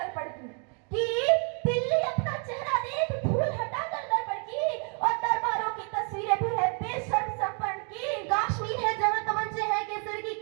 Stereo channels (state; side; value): quieter; left; 39.1 dB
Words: की, कि दिल्ली अपना चेहरा देख फूल हटा कर दर्पण की, और दरबारों की तस्वीरें भी है बेशर्म संपन्न की। कश्मीर है जहाँ तमंचे हैं केसर की